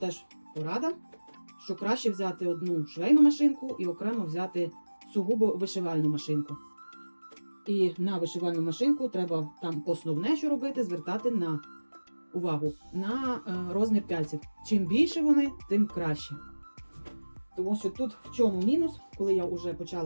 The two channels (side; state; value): both; inverted; correlation -1.00